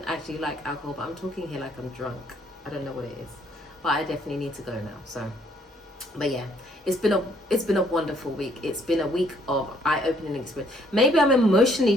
actually like alcohol, but I'm talking here like I'm drunk. I don't know what it is, but I definitely need to go now. So, but yeah, it's been a wonderful week. It's been a week of eye-opening experience. Maybe I'm emotionally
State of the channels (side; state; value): both; normal; correlation 0.65